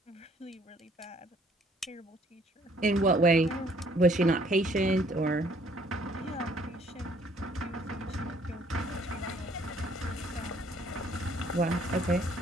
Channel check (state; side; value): normal; both; correlation 0.62